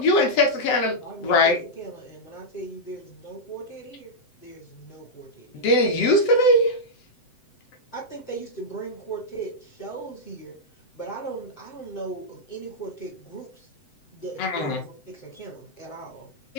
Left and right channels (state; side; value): late; right; 7.8 ms